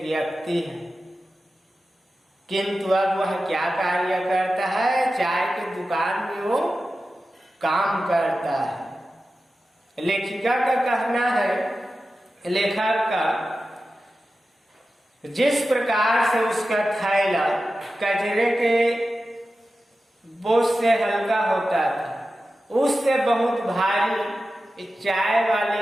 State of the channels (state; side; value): normal; both; correlation 0.93